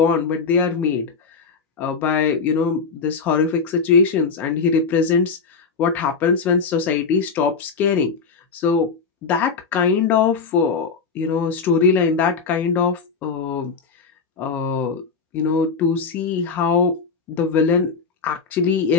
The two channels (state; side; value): quieter; right; 5.1 dB